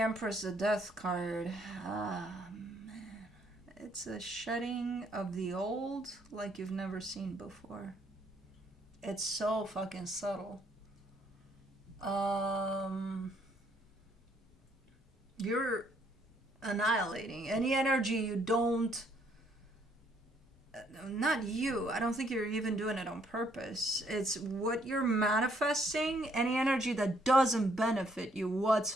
the Death card. Ah, man. It's a shedding of the old like you've never seen before. It's so fucking subtle. You're annihilating any energy you don't, not you, I don't think you're even doing it on purpose. It's what you're manifesting. Any energy that doesn't benefit you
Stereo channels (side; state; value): both; normal; correlation 0.68